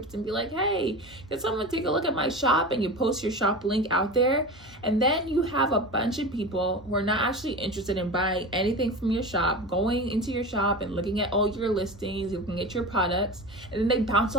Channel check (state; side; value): normal; both; correlation 0.29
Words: and be like, hey, can someone take a look at my shop? And you post your shop link out there. And then you have a bunch of people who are not actually interested in buying anything from your shop, going into your shop and looking at all your listings, looking at your products, and then they bounce